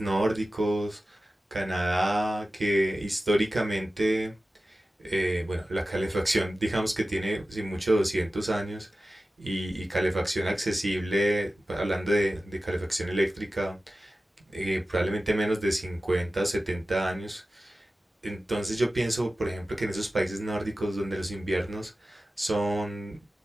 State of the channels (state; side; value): normal; both; correlation 0.95